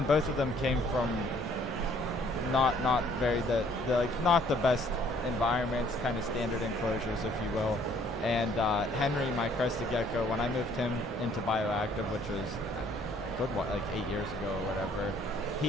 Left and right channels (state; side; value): normal; both; correlation 0.61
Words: both of them came from not very not the best environments, kind of standard enclosures, if you will. And Henry, my crested gecko, when I moved him into bioactive, which was like 8 years ago or whatever,